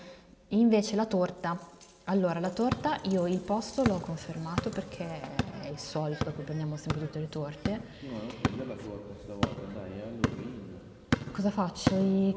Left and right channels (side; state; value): both; identical; correlation 1.00